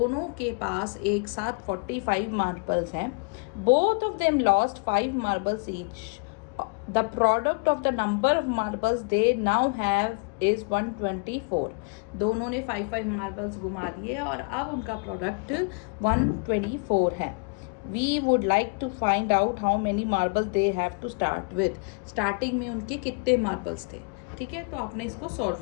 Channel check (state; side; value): quieter; right; 33.6 dB